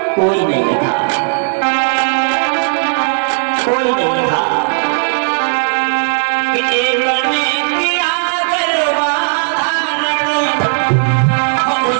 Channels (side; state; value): left; silent; 70 dB below the other